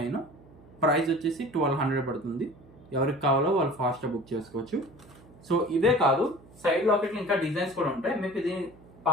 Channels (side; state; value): right; noise; hum, 24 dB below the sound